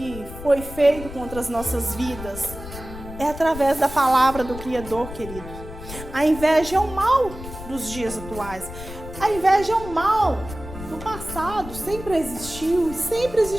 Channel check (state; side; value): noise; left; rumble, 12 dB below the sound